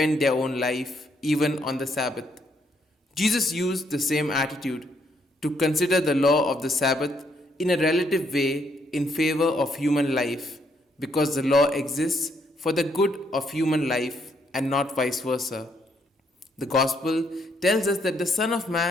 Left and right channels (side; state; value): both; normal; correlation 0.73